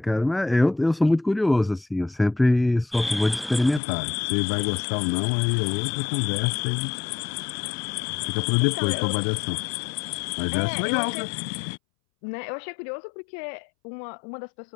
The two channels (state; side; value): drops out; right; at 3.8 s